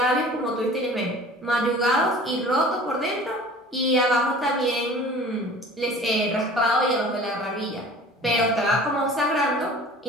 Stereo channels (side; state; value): both; normal; correlation 0.44